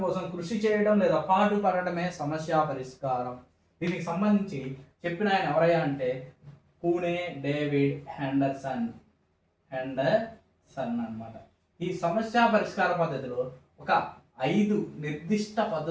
కోసం కృషి చేయడం లేదా పాటుపడటమే సమస్య పరిష్కారం. దీనికి సంబంధించి చెప్పిన ఆయన ఎవరయ్యా అంటే పూణే డేవిడ్ హెండర్సన్ అన్నమాట. ఈ సమస్య పరిష్కార పద్ధతిలో ఒక 5 నిర్దిష్ట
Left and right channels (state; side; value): identical; both; correlation 1.00